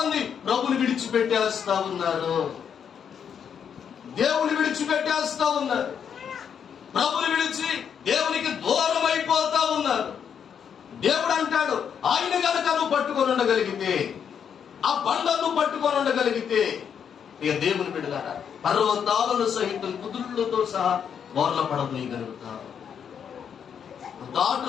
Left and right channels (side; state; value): right; quieter; 7.8 dB